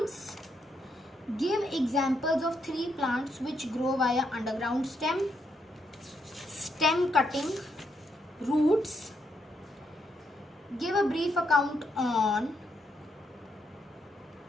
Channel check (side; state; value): both; normal; correlation 0.78